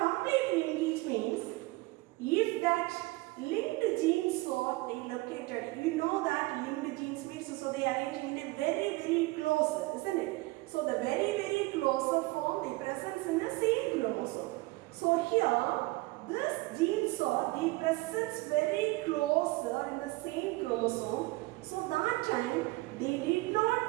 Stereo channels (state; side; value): quieter; left; 22.0 dB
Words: linkage means if that linked genes are located, you know that linked genes means so they are arranging in a very close, isn't it? So the very closer form they presence in the same chromosome. So here this genes are the presence very closer in the same chromosome. So that time